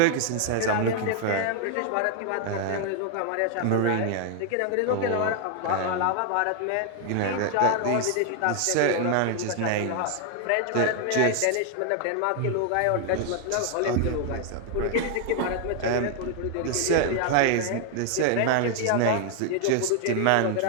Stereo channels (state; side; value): different; both; correlation 0.00